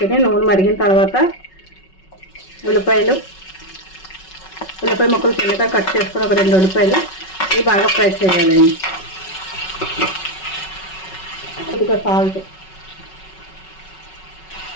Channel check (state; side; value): late; right; 5.4 ms